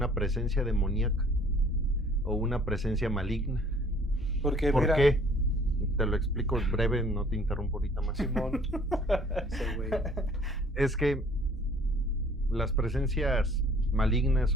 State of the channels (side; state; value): both; normal; correlation 0.56